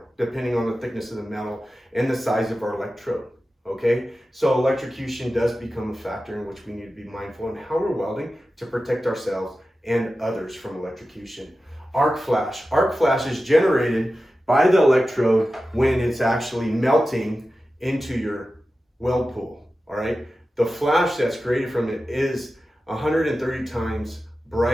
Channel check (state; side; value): normal; both; correlation 0.93